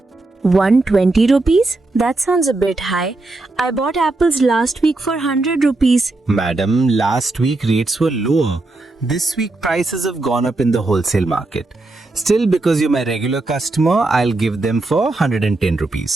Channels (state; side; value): quieter; left; 3.1 dB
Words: 120 rupees? That sounds a bit high. I bought apples last week for 100 rupees. Madam, last week rates were lower. This week prices have gone up in the wholesale market. Still, because you're my regular customer, I'll give them for 110